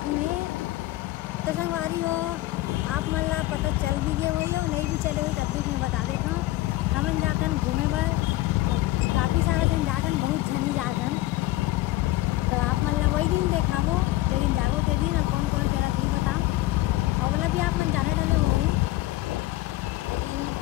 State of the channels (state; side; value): quieter; right; 17.2 dB